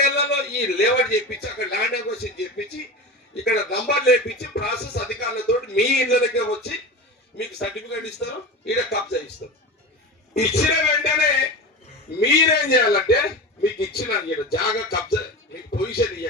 ఏళ్లలో ఈ లేఅవుట్ చేయించి, అక్కడ ల్యాండ్ అక్విజిషన్ చేయించి, ఇక్కడ నంబర్ లేపించి ప్రాసెస్ అధికారులతో మీ ఇళ్ళకే వచ్చి మీకు సర్టిఫికేట్ ఇస్తారు, ఈడ కబ్జా ఇస్తారు. ఇచ్చిన వెంటనే మీరేం చేయాలంటే, మీకు ఇచ్చిన జాగా కబ్జా మీకు పొజిషన్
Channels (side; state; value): both; normal; correlation 0.28